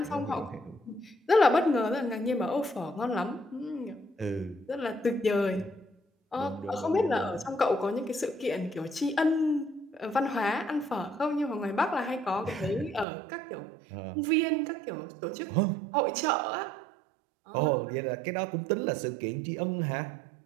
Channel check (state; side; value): drops out; left; at 13.1 s